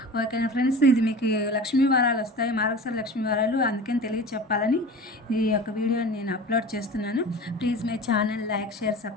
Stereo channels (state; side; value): normal; both; correlation 0.36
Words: ఓకేనా ఫ్రెండ్స్, ఇది మీకు లక్ష్మీ వారాలు వస్తాయి, మార్గశిర లక్ష్మీ వారాలు, అందుకని తెలియచెప్పాలని ఈ యొక్క వీడియోని నేను అప్లోడ్ చేస్తున్నాను. Please my channel like, share,